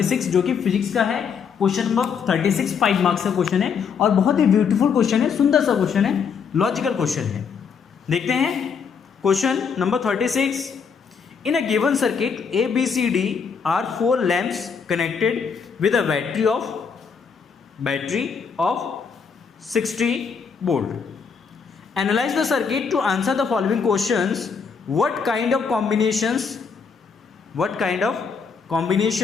जो कि फिजिक्स का है। क्वेश्चन नंबर 36 5 मार्क्स का क्वेश्चन है और बहुत ही ब्यूटीफुल क्वेश्चन है, सुंदर सा क्वेश्चन है, लॉजिकल क्वेश्चन है। देखते हैं question number 36। In a given circuit ABCD are 4 lamps connected with a battery of 60 volt. Analyse the circuit to answer the following questions. What kind of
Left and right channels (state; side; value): quieter; right; 6.1 dB